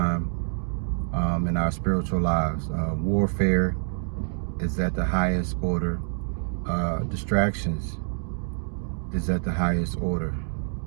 in our spiritual lives. Warfare is at the highest order. Distractions is at the highest order.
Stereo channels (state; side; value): silent; left; digital silence